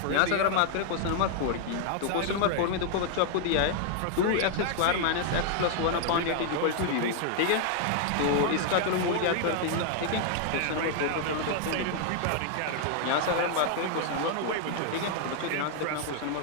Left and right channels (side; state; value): both; different; correlation 0.00